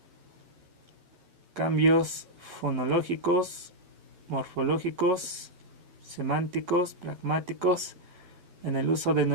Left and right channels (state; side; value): late; left; 11 ms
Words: Cambios fonológicos, morfológicos, semánticos, pragmáticos en el uso de